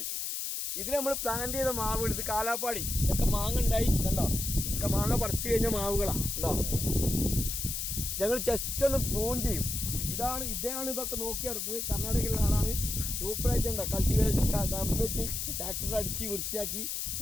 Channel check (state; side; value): noise; left; hiss, 3 dB below the sound